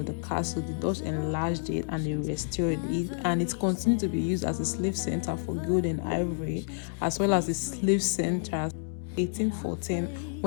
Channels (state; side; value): silent; right; digital silence